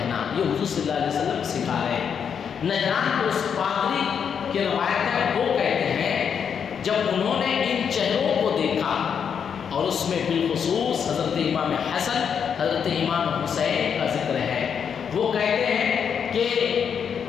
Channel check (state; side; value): quieter; right; 7.3 dB